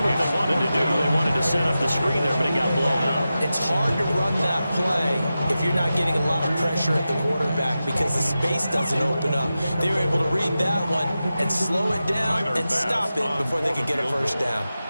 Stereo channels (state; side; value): inverted; both; correlation -0.93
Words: what they wanted to do. They wanted to set up the screen there, but it got blown up. It's hard to run that play if you're not getting a lot of pressure at the quarterback because the space doesn't open up. They were able to read that one and slow it down and stop it before they could get a first down.